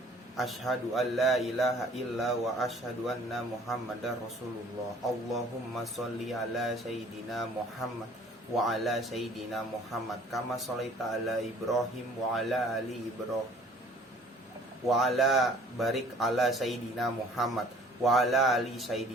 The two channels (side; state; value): both; normal; correlation 0.53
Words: Asyhadu an la ilaha illa wa asyhadu anna muhammadar rasulullah. Allahumma sholli ala sayyidina Muhammad wa ala sayyidina Muhammad kama sholaita ala Ibrahim wa ala ali Ibrahim wa ala barik ala sayyidina Muhammad wa ala ali